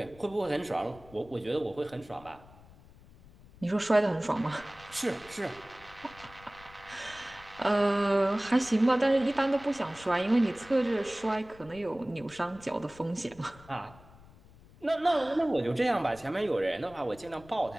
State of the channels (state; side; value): noise; left; rumble, 23 dB below the sound